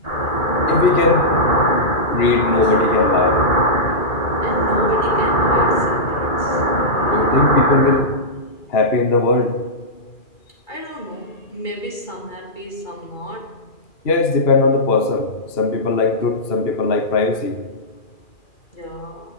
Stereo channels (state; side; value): late; right; 2.4 ms